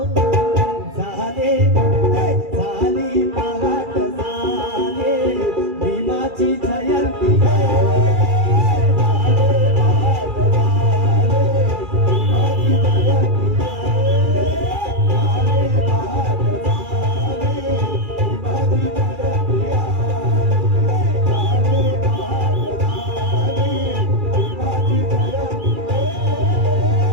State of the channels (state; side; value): late; left; 2.4 ms